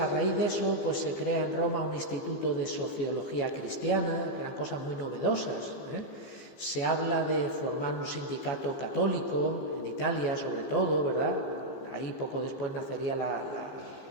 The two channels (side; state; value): right; late; 15 ms